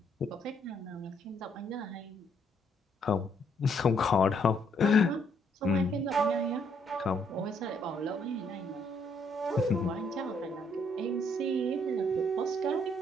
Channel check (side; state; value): both; normal; correlation 0.70